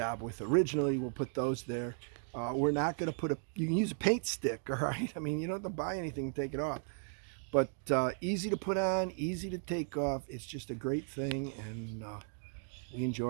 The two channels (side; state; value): left; silent; 54 dB below the other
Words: with originally. We'll put those there. We're not going to put you can use a paint stick, all right? I mean, you don't have to buy anything and take it off. But easy to put on, easy to take off. It's just a great thing, and we